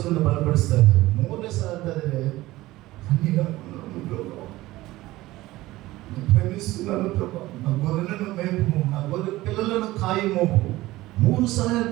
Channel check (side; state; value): left; quieter; 17.7 dB